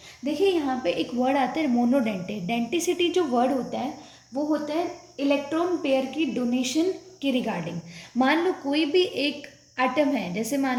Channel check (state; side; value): identical; both; correlation 1.00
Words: देखिए यहाँ पे एक वर्ड आता है मोनोडेंटेट। डेंटिसिटी जो वर्ड होता है वो होता है इलेक्ट्रॉन पेयर की डोनेशन के रिगार्डिंग। मान लो कोई भी एक एटम है, जैसे